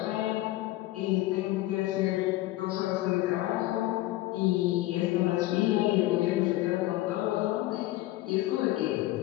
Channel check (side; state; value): right; quieter; 17.0 dB